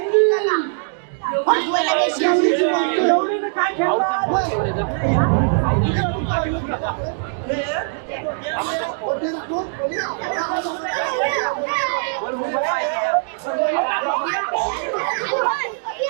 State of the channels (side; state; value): left; silent; digital silence